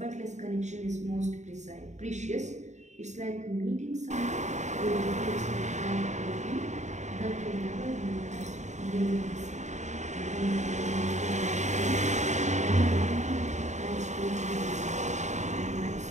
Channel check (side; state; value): left; late; 0.34 ms